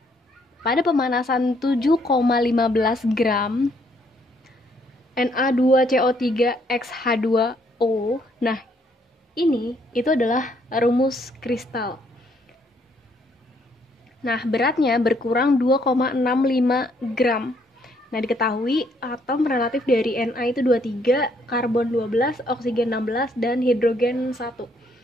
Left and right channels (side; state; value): both; normal; correlation 0.69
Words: Pada pemanasan 7,15 gram Na2CO3X H2O. Nah, itu adalah rumus kristal. Nah, beratnya berkurang 2,65 gram. Nah, diketahui atom relatif dari Na itu 23, karbon 12, oksigen 16, dan hidrogen 1.